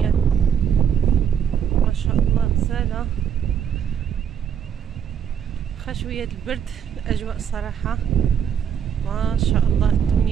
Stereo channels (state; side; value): quieter; left; 8.2 dB